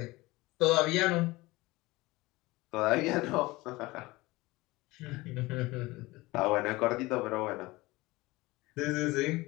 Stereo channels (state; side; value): quieter; right; 21.0 dB